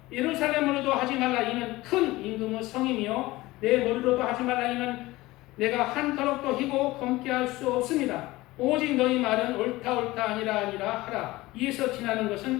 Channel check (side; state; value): right; quieter; 19.2 dB